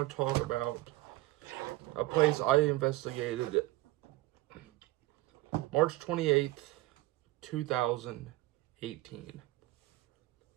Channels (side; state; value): left; quieter; 18.2 dB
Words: to talk about a place I investigated March 28th, 2018.